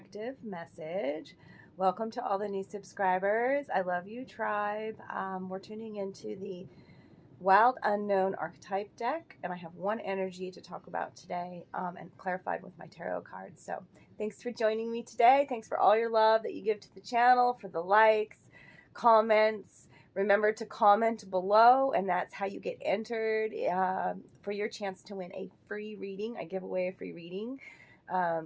message. Welcome to all the new subscribers. I love you, tribe. We're tuning into the Wild Unknown Archetype deck, and I have one energy to talk about today and clarified with my tarot cards. So thanks for joining me today. Thanks for all your love that you give to the channel, for the likes, comments. Remember to comment below, and that's how you get entered for your chance to win a free reading. I give away a free reading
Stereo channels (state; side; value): identical; both; correlation 1.00